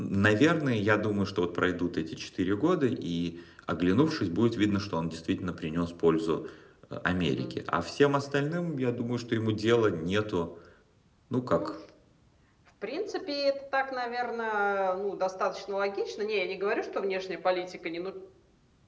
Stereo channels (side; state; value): both; identical; correlation 1.00